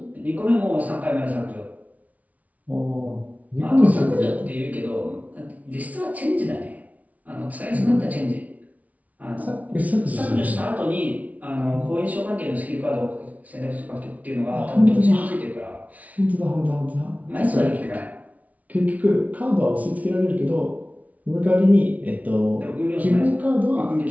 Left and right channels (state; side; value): late; left; 0.070 ms